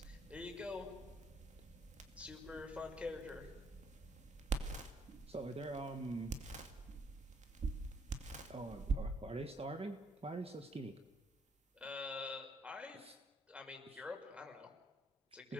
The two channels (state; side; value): normal; both; correlation 0.70